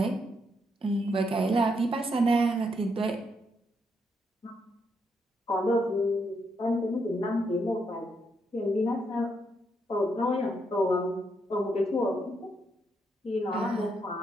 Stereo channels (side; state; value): both; normal; correlation 0.78